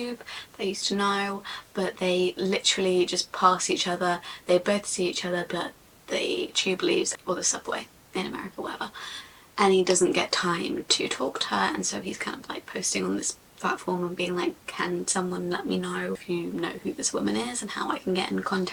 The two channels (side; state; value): both; identical; correlation 1.00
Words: they used to know, but they literally just pass each other. They both see each other, but the tube leaves, or the subway in America, whatever, and he doesn't get time to talk to her. And so he's kind of like posting on this platform and being like, can someone let me know if you know who this woman is and how I can get in